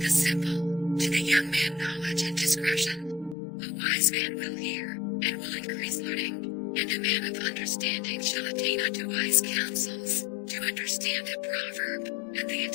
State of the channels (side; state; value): right; drops out; at 3.4 s